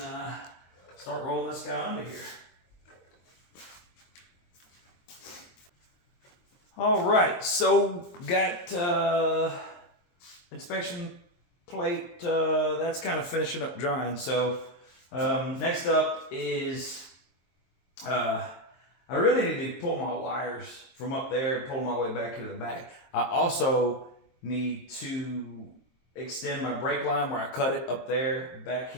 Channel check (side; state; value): right; late; 23 ms